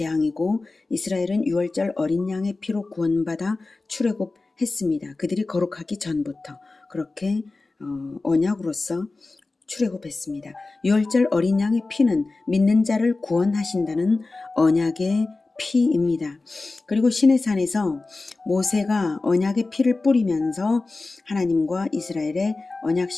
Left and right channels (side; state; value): right; quieter; 3.5 dB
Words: 이스라엘은 유월절 어린 양의 피로 구원받아 출애굽했습니다. 그들이 거룩하기 전부터 그렇게 언약으로서 출애굽했습니다. 유월절 어린 양의 피는 믿는 자를 구원하신다는 언약의 피입니다. 그리고 시내산에서 모세가 언약의 피를 뿌리면서 하나님과 이스라엘의